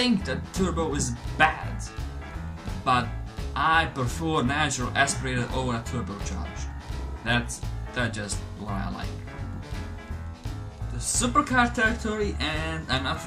that turbo is bad, but I prefer natural aspirated over a turbocharged. That's just what I like. The supercar territory, and I'm not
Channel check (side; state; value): both; identical; correlation 1.00